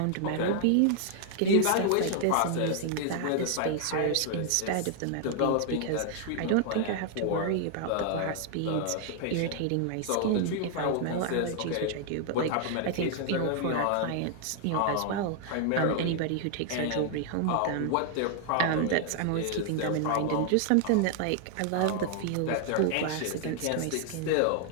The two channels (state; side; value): different; both; correlation 0.00